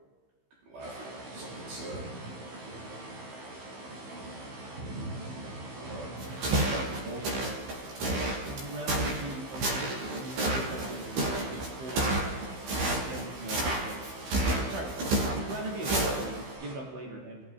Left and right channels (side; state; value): left; late; 15 ms